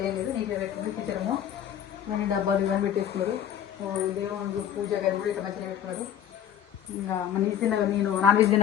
ఏం లేదు, నీట్గా పెట్టుకుంది కిచెన్ రూమ్. ఇవన్నీ డబ్బాలు ఇవన్నీ పెట్టేసుకున్నారు. దేవుడు పూజ గది కూడా ఇట్లా మంచిగా పెట్టుకున్నారు. ఇంకా మన తిన్న నేను నాన్ వెజ్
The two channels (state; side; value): quieter; right; 9.7 dB